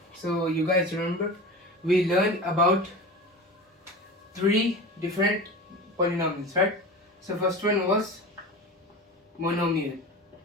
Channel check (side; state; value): both; normal; correlation 0.32